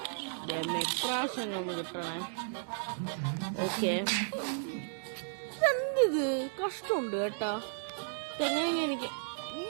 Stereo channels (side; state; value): left; silent; digital silence